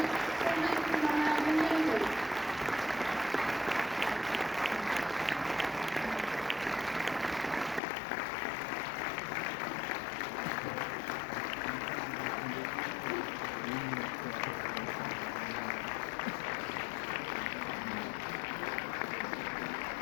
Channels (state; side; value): drops out; right; at 7.8 s